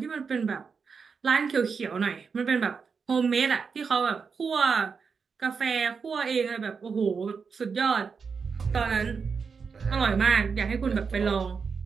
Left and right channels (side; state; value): left; quieter; 5.5 dB